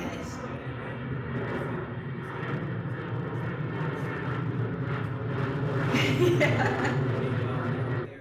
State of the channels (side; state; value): both; identical; correlation 1.00